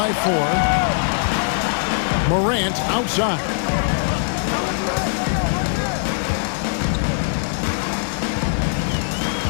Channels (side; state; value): right; silent; 65 dB below the other